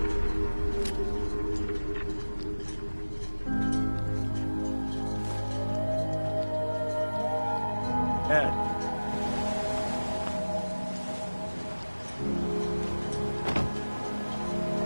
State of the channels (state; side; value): inverted; both; correlation -1.00